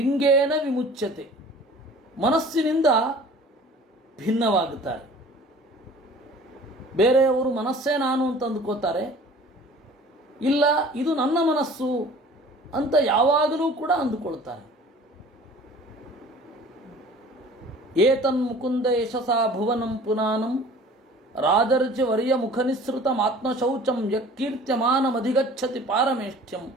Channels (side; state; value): both; normal; correlation 0.47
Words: ವಿಮುಚ್ಯತೆ, ಮನಸ್ಸಿನಿಂದ ಭಿನ್ನವಾಗುತ್ತಾರೆ. ಬೇರೆಯವರು ಮನಸ್ಸೇ ನಾನು ಅಂತ ಅಂದುಕೋತಾರೆ, ಇಲ್ಲ ಇದು ನನ್ನ ಮನಸ್ಸು ಅಂತ ಯಾವಾಗಲೂ ಕೂಡ ಅಂದುಕೊಳ್ತಾರೆ. ಏತನ್ಮುಕುಂದ ಯಶಸಾ ಭುವನಂ ಪುನಾನಂ ರಾಜರ್ಜಿವರ್ಯ ಮುಖನಿಸೃತಂ ಆತ್ಮಶೌಚಂ ಯಕೀರ್ತ್ಯಮಾನಮಧಿಗಚ್ಚತಿ ಪಾರಮೇಷ್ಠ್ಯಂ